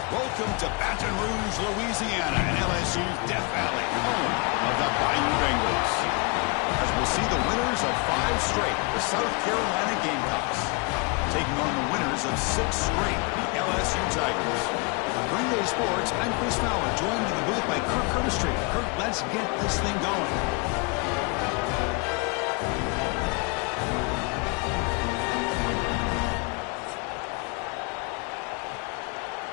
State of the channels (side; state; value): right; quieter; 30.4 dB